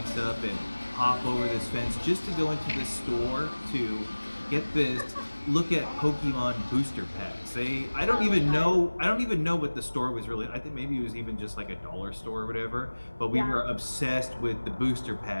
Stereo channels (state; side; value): inverted; both; correlation -1.00